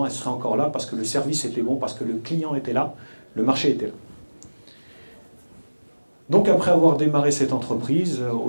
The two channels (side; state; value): both; inverted; correlation -1.00